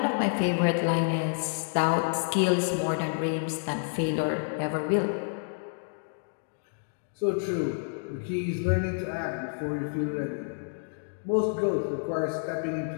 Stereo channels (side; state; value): right; silent; digital silence